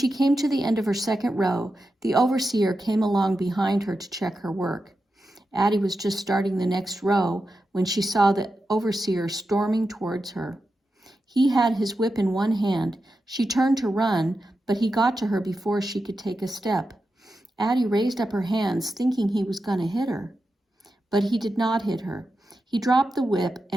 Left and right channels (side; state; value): both; normal; correlation 0.90